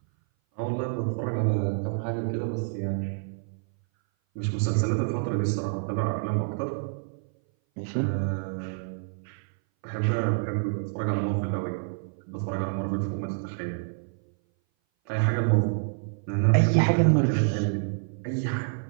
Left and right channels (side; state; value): left; silent; 58 dB below the other